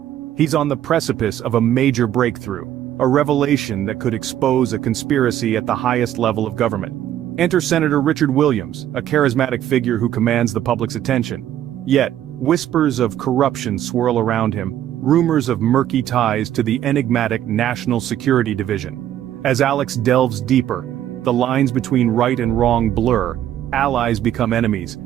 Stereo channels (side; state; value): left; quieter; 11.6 dB